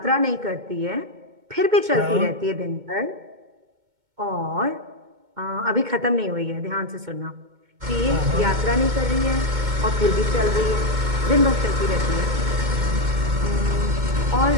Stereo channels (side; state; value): left; late; 2.2 ms